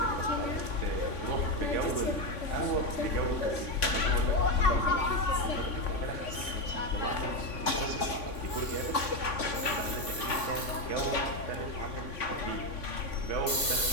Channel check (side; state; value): right; late; 3.5 ms